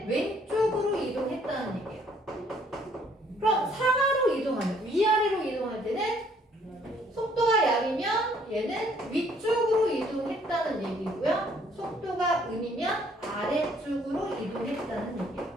왼쪽으로 이동했다는 얘기예요. 그럼 상하로 이동하면 위아래로 이동할 때는 속도가 양이면 얘는 위쪽으로 이동했다는 얘기고요. 속도가 음이면 아래쪽으로 이동했다는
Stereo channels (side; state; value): both; normal; correlation 0.63